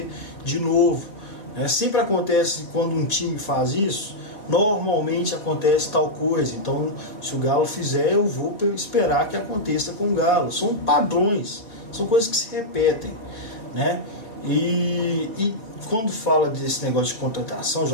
de novo. Sempre acontece quando um time faz isso, normalmente acontece tal coisa, então se o Galo fizer, eu vou esperar que aconteça com o Galo. São padrões, são coisas que se repetem, né? E quando fala desse negócio de contratação,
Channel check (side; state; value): right; late; 4.5 ms